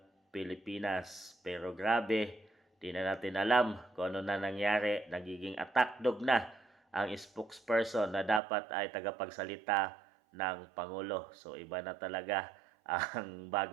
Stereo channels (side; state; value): left; drops out; at 8.4 s